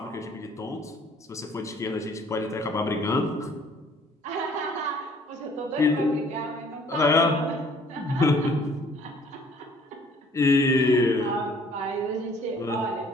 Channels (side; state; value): both; normal; correlation 0.57